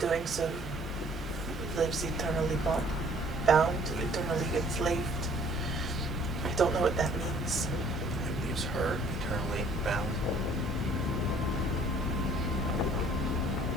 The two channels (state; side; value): normal; both; correlation 0.57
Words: so, lives eternally bound, eternally enslaved. I don't know what that means. It leaves her eternally bound.